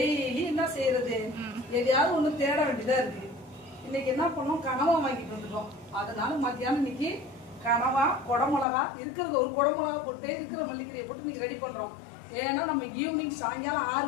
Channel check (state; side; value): drops out; right; at 8.7 s